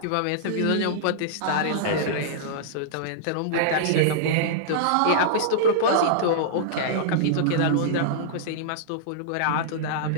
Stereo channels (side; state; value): both; different; correlation -0.02